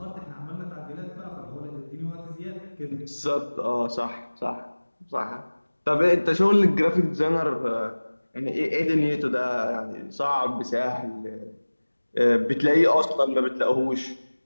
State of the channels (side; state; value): both; inverted; correlation -1.00